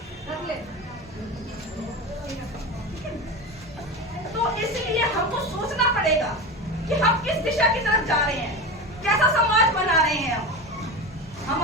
रख ले। तो इसलिए हमको सोचना पड़ेगा कि हम किस दिशा की तरफ जा रहे हैं, कैसा समाज बना रहे हैं हम।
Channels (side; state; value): both; normal; correlation 0.24